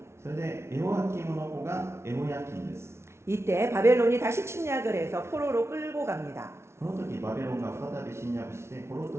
それでエホヤキムの子がエホヤキンです。 이때 바벨론이 다시 침략을 해서 포로로 끌고 갑니다. この時バビロンが再び侵略して捕虜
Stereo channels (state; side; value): late; left; 0.13 ms